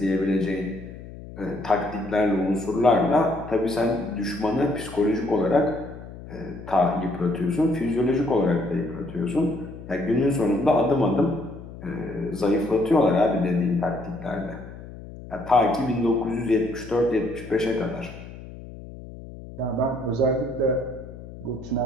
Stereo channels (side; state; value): left; noise; hum, 14 dB below the sound